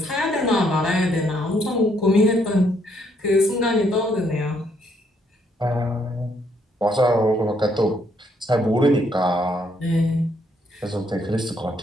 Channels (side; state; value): both; normal; correlation 0.71